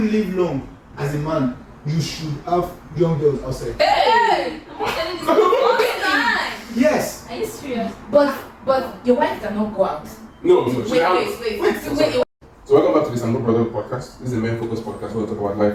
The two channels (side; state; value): both; identical; correlation 1.00